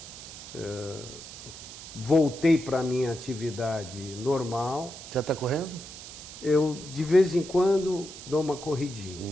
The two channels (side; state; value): right; noise; hiss, 13 dB below the sound